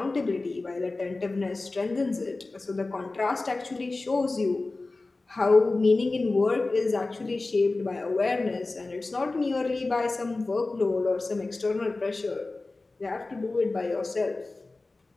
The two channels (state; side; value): quieter; right; 3.3 dB